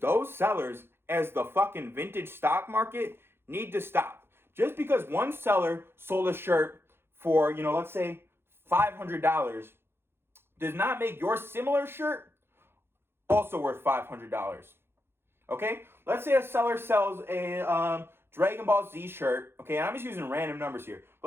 sellers as the fucking vintage stock market need to stop. Just because one seller sold a shirt for, let's say $500 does not make your similar shirt also worth $500. Okay? Let's say a seller sells a Dragon Ball Z shirt. Okay, and I'm just using random numbers here.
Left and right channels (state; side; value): late; left; 0.11 ms